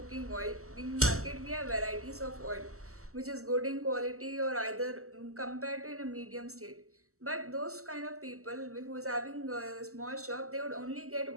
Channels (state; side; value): late; left; 0.64 ms